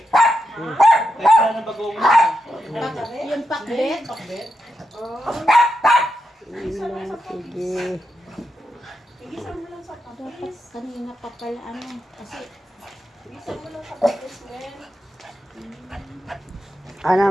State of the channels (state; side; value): normal; both; correlation 0.86